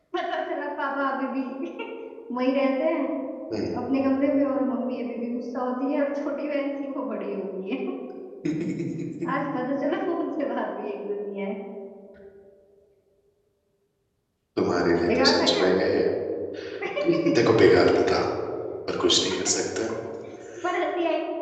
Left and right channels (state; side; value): identical; both; correlation 1.00